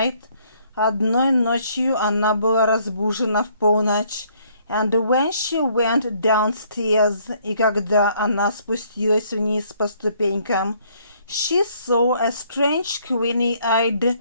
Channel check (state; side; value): inverted; both; correlation -0.65